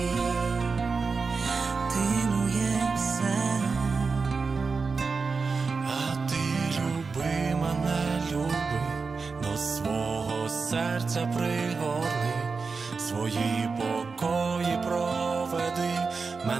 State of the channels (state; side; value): quieter; left; 4.6 dB